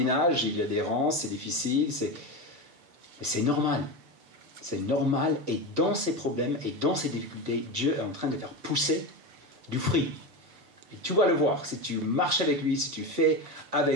il y a des rangs, c'est difficile, mais c'est normal. C'est normal, et dans ces problèmes et dans ces difficultés, Dieu est en train de faire pousser du fruit. Et tu vas le voir, si tu marches avec lui, si tu fais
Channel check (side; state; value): left; late; 6.7 ms